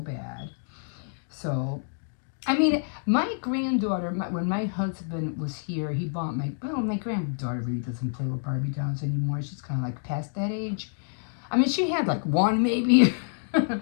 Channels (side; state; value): right; silent; digital silence